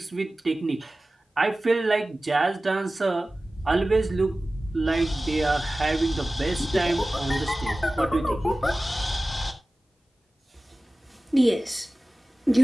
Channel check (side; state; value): both; normal; correlation 0.97